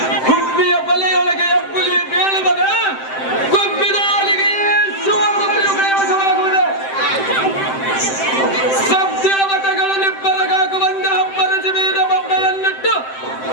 ಗುಬ್ಬಿಯ ಬಲೆಯೊಳಗೆ ಎಬ್ಬುಲಿ ಬೀಳುತ್ತದೆ ಗುಬ್ಬಿದ ಅಲಿಗೆ ಸುವರ್ಣಮಣಿಯು ಕೈವಶವಾಗುವುದು ಸಬ್ದೇವತೆಗಳು ನಿಬ್ಬರಗಾಗುವಂತೆ ಹಬ್ಬರಸಿ ಬೀದ ಬೊಬ್ಬೆಯನ್ನಿಟ್ಟು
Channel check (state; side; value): late; right; 7.7 ms